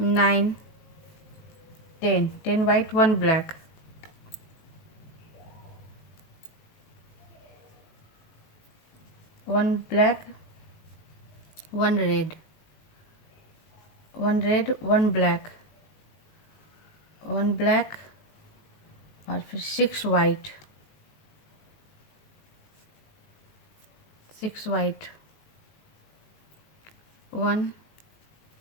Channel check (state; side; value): late; right; 18 ms